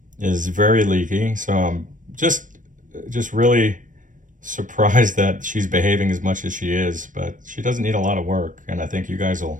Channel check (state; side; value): late; left; 0.38 ms